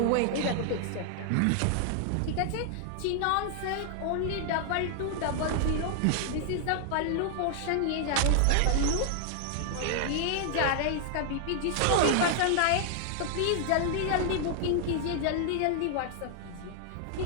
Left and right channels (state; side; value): different; both; correlation 0.00